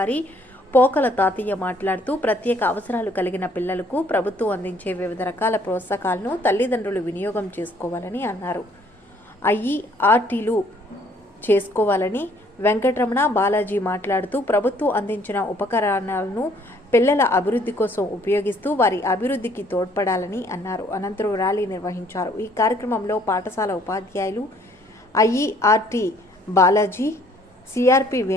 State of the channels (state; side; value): normal; both; correlation 0.62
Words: పోకల తాతయ్య మాట్లాడుతూ ప్రత్యేక అవసరాలు కలిగిన పిల్లలకు ప్రభుత్వం అందించే వివిధ రకాల ప్రోత్సాహకాలను తల్లిదండ్రులు వినియోగం చేసుకోవాలని అన్నారు. ఐఈఆర్టీలు చేసుకోవాలని వెంకటరమణ బాలాజీ మాట్లాడుతూ ప్రభుత్వం అందించిన ఉపకరణాలను పిల్లల అభివృద్ధి కోసం ఉపయోగిస్తూ వారి అభివృద్ధికి తోడ్పడాలని అన్నారు. అనంతరం ర్యాలీ నిర్వహించారు. ఈ కార్యక్రమంలో పాఠశాల ఉపాధ్యాయులు, ఐఈఆర్టీ బాలాజీ, సిఆర్పి